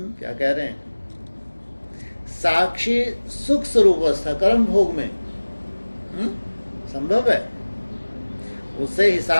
क्या कह रहे हैं? साक्षी सुख स्वरूप अवस्था कर्म भोग में संभव है। उससे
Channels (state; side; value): inverted; both; correlation -1.00